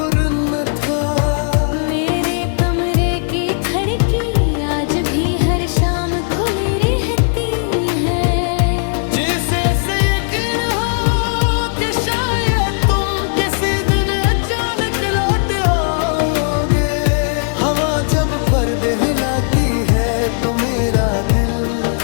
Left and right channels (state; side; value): silent; right; 68 dB below the other